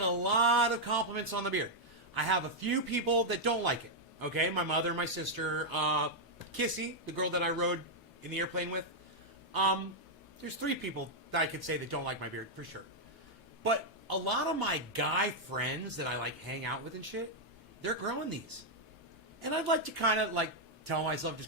a lot of compliments on the beard. I have a few people that don't like it. Okay, my mother, my sister, Kissy, the girl that I rode in the airplane with. There's 3 people that I could say that don't like my beard for sure. But a lot of my guy friends that I like hang out with and shit, they're growing these. And I'd like to kind of like tell myself,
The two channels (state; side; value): normal; both; correlation -0.03